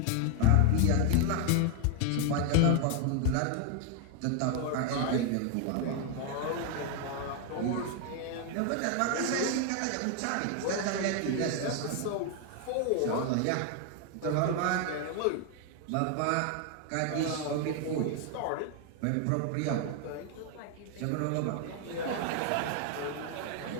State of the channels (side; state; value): both; different; correlation 0.00